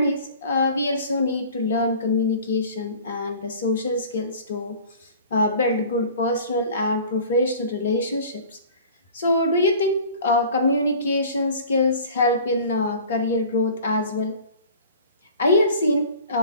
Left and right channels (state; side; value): inverted; both; correlation -0.44